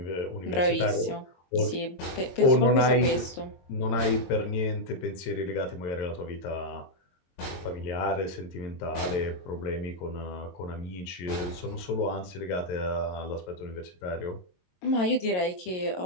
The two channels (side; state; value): right; late; 22 ms